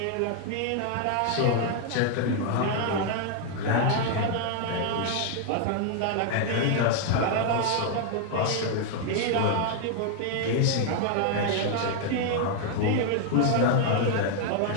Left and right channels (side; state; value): both; different; correlation 0.00